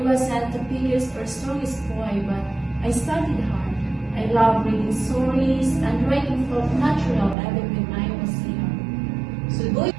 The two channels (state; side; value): drops out; left; at 7.4 s